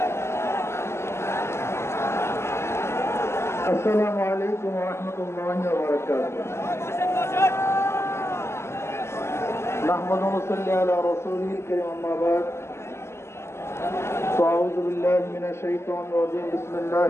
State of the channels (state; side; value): late; right; 0.13 ms